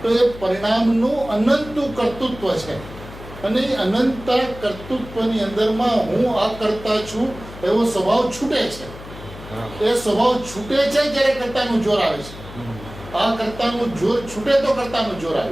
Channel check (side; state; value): left; noise; hum, 15 dB below the sound